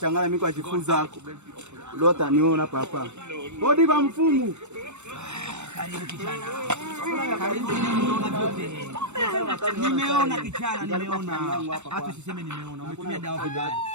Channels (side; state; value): left; late; 0.83 ms